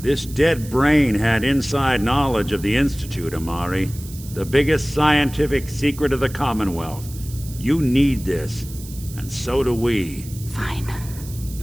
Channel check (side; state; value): right; noise; hiss, 17 dB below the sound